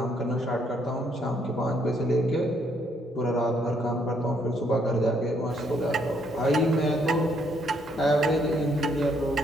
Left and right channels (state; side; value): normal; both; correlation 0.70